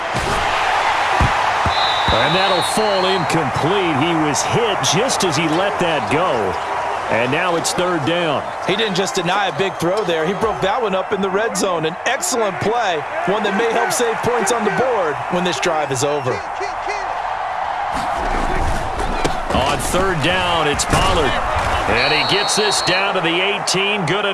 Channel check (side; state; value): both; identical; correlation 1.00